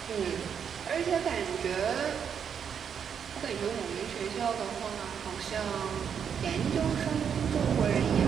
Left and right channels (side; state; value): left; quieter; 7.6 dB